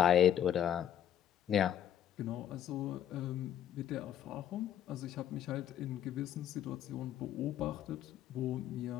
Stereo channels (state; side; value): quieter; right; 10.2 dB